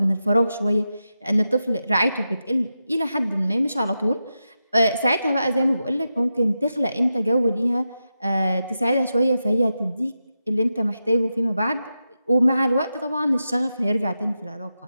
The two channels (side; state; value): both; inverted; correlation -0.89